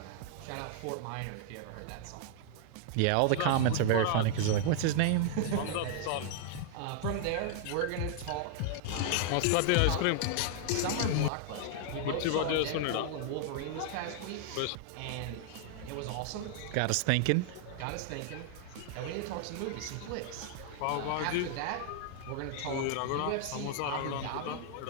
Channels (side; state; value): both; different; correlation 0.00